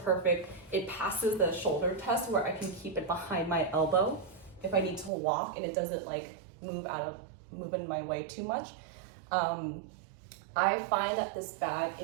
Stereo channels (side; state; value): left; drops out; at 5.1 s